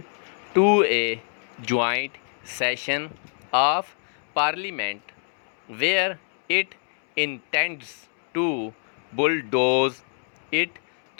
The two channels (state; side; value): silent; right; 61 dB below the other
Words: to a joint session of parliament where it intends to bulldoze it